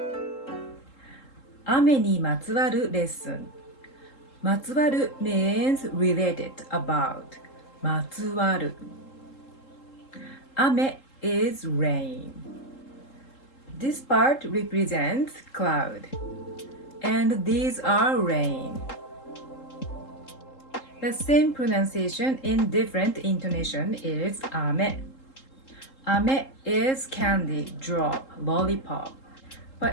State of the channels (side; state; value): right; late; 3.7 ms